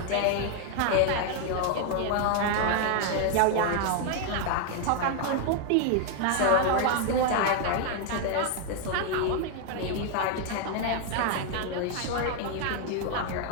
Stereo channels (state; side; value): different; both; correlation 0.00